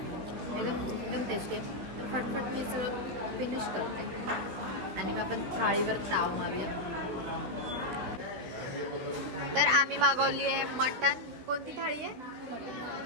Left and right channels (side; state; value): left; late; 16 ms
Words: एकदम टेस्टी आहे. तर फटफट मी सगळं फिनिश करते आणि मग आपण थाळीवर ताव मारूया. तर आम्ही मागवली आहे मटन. कोणती थाळी आहे?